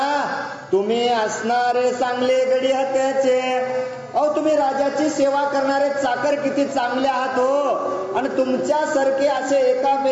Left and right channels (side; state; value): both; identical; correlation 1.00